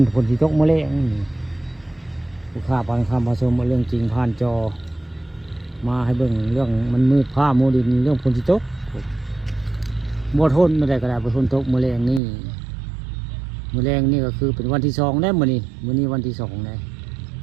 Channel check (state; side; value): drops out; left; at 12.2 s